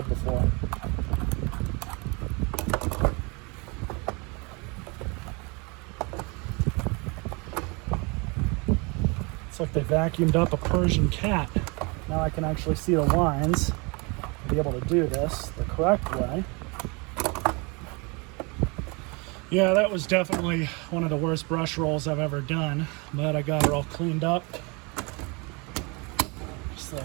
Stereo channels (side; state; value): left; quieter; 29.4 dB